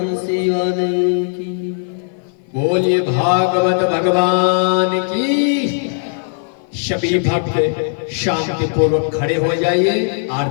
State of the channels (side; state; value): right; silent; 56 dB below the other